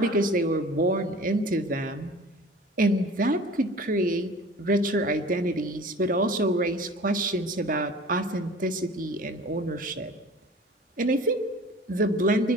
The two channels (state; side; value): normal; both; correlation 0.43